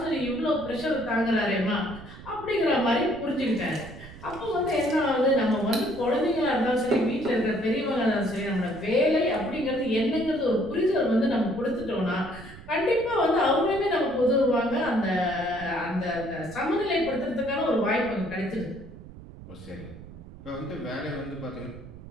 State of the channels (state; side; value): noise; right; rumble, 16 dB below the sound